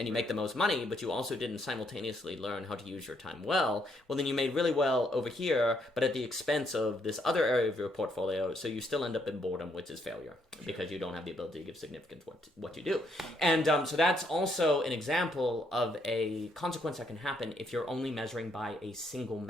you make the most money, but you also didn't simultaneously learn how to use your time well then you made really well over here, but at the expense of this other area of your portfolio, so you still end up in boredom, which is failure, because you don't have the ability to give significance to what you do. And so that's also an example of a consequence that can happen if you're only measuring by a single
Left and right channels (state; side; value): normal; both; correlation 0.72